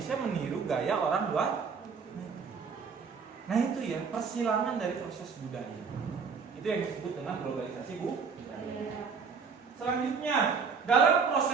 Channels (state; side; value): quieter; left; 5.6 dB